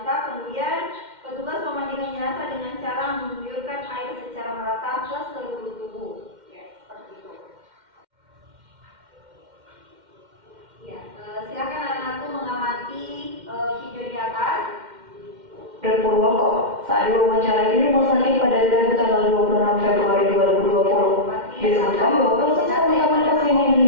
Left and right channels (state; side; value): late; left; 2.1 ms